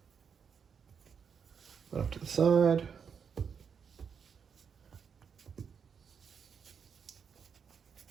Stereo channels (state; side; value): quieter; left; 6.7 dB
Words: put it off to the side.